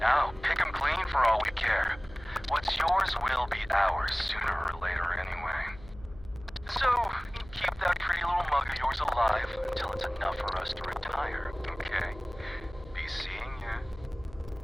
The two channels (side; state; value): left; noise; hum, 18 dB below the sound